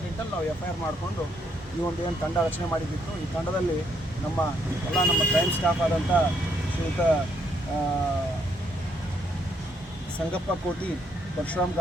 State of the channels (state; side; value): normal; both; correlation 0.72